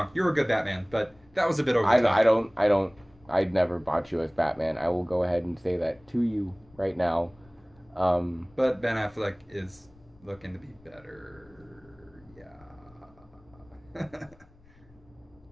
you're a good Batman, but that was a bit over the top. I'd never bought you as Batman. I will go ahead and say that to you right now. But Ben Affleck is looking to be better.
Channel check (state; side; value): noise; left; rumble, 28 dB below the sound